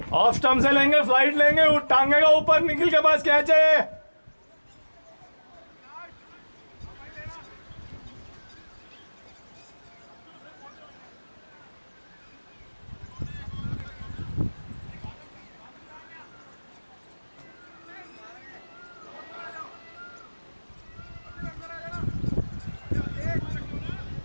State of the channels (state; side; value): inverted; both; correlation -1.00